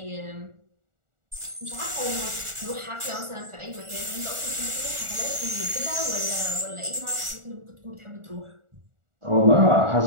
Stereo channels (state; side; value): late; left; 1.4 ms